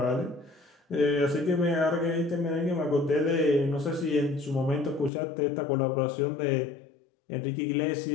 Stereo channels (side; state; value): right; drops out; at 5.1 s